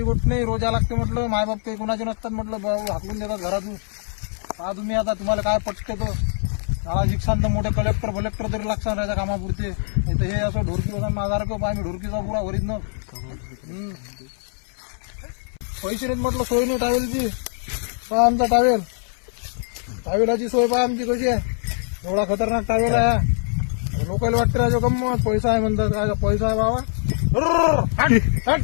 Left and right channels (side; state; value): right; silent; 61 dB below the other